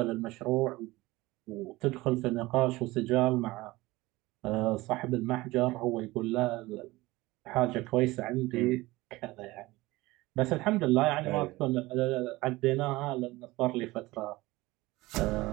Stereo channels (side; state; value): left; quieter; 20.0 dB